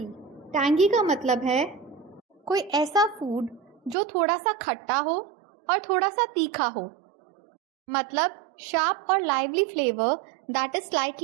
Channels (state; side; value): drops out; left; at 4.0 s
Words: Tangy का मतलब है कोई ऐसा फूड जो थोड़ा सा खट्टा हो और थोड़ा सा तीखा हो। मतलब शार्प और lively flavour that is